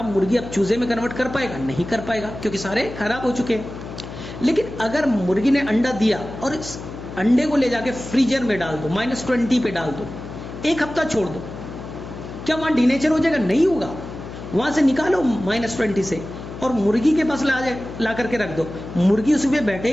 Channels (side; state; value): left; noise; hum, 11 dB below the sound